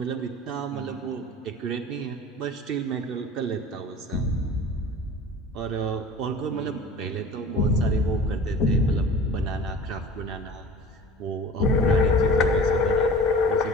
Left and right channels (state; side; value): normal; both; correlation 0.40